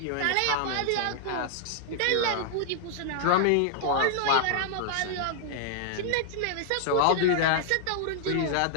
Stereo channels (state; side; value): different; both; correlation -0.01